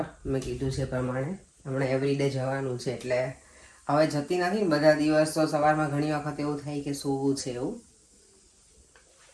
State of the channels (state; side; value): identical; both; correlation 1.00